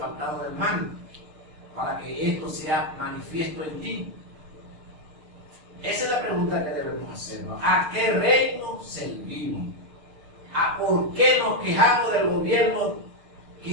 del mal, para que esto sea manifiesto en ti. Esa es la pregunta que debemos hacernos. ¿A qué reino servimos? ¿A por qué nos quejamos del gobierno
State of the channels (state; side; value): late; left; 6.6 ms